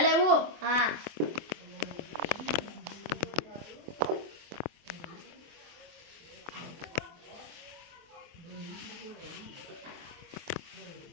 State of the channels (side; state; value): left; late; 24 ms